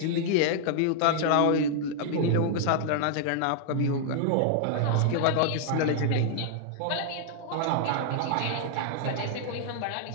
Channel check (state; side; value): different; both; correlation -0.01